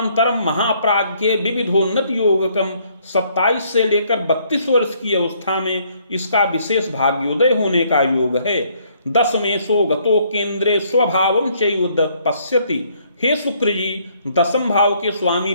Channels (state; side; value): inverted; both; correlation -0.66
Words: महाप्राज्ञे विविधोन्नत योगकम। 27 से लेकर 32 वर्ष की अवस्था में इसका विशेष भाग्योदय होने का योग है। 10मेशो गतो केंद्रे स्वभावम चैव पश्यति। हे शुक्र जी, 10म भाव के स्वामी